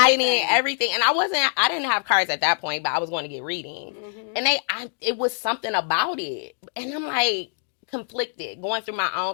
everything. And I didn't have cards at that point, but I was going to get readings. And it was something about it. And I'm like, conflicted, going through my own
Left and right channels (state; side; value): silent; right; digital silence